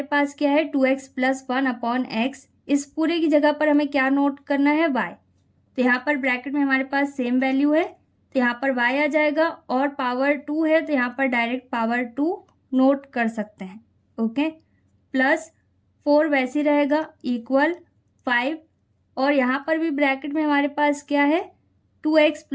पास क्या है 2x + 1 अपॉन x, इस पूरे की जगह पर हमें क्या नोट करना है y, तो यहाँ पर ब्रैकेट में हमारे पास सेम वैल्यू है तो यहाँ पर y आ जाएगा और पावर 2 है तो यहाँ पर डायरेक्ट पावर 2 नोट कर सकते हैं। ओके, +4 वैसे ही रहेगा इक्वल 5 और यहाँ पर भी ब्रैकेट में हमारे पास क्या है 2x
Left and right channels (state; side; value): identical; both; correlation 1.00